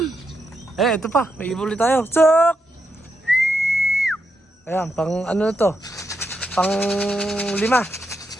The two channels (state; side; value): normal; both; correlation 0.83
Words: Ito pa. May ibon ulit tayo. Sok! Ayan. Pang ano to. Pang 5.